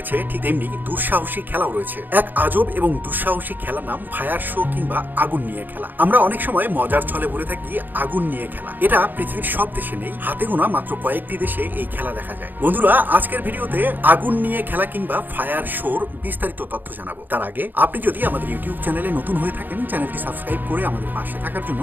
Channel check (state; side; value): late; left; 0.088 ms